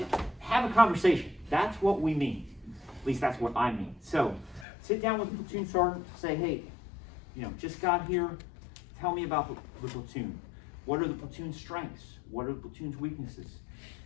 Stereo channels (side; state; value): right; drops out; at 4.7 s